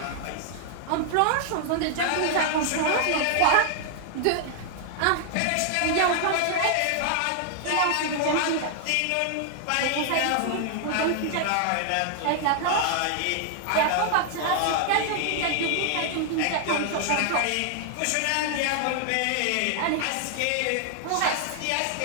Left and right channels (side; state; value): both; different; correlation 0.00